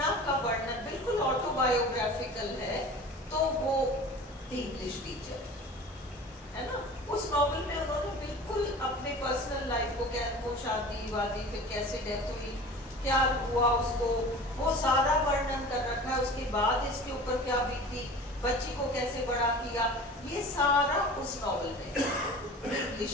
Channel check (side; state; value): both; normal; correlation 0.39